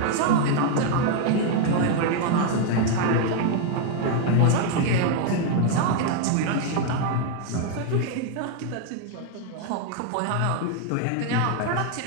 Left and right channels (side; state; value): both; different; correlation 0.01